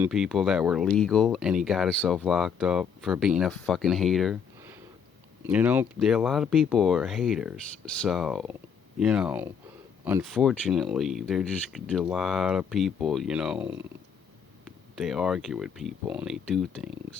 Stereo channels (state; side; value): quieter; right; 6.9 dB